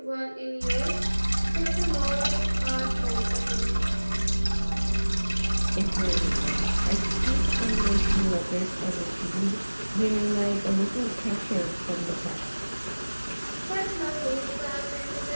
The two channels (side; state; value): both; inverted; correlation -1.00